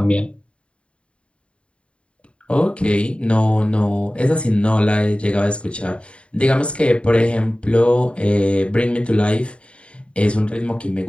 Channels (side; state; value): right; late; 0.059 ms